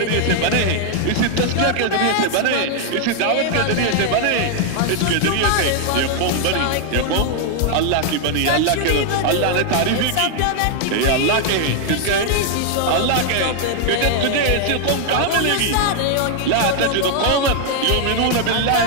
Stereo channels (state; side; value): different; both; correlation 0.00